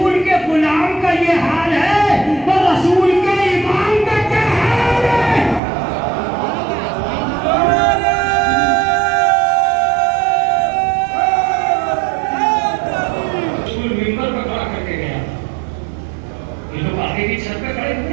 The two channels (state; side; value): drops out; left; at 5.6 s